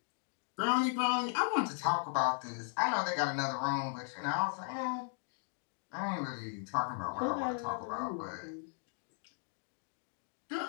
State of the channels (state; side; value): silent; right; 53 dB below the other